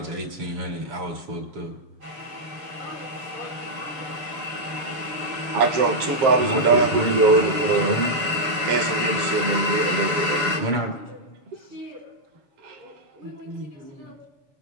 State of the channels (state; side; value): late; left; 6.9 ms